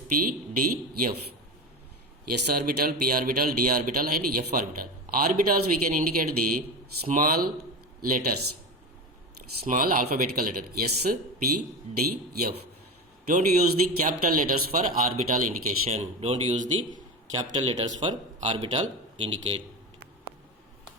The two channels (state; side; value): normal; both; correlation 0.23